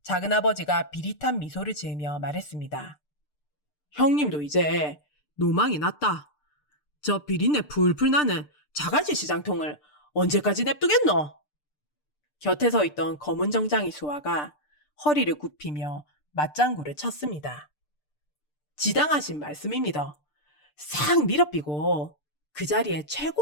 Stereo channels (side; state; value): right; late; 6.7 ms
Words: 작은아버지가 비릿한 미소를 지으며 말했습니다. 형님도 이제 노망이 났다. 저 비린내 풀풀 나는 자갈치 시장통을 언제까지 냅두겠노? 곁에 서 있던 검은 정장의 수아가 허리를 굽히며 맞장구를 쳤습니다. 지당하신 말씀입니다. 싹 밀어삐고 그 자리에